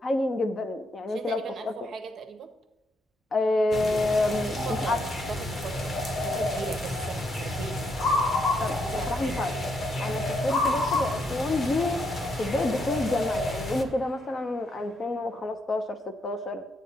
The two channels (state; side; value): normal; both; correlation 0.77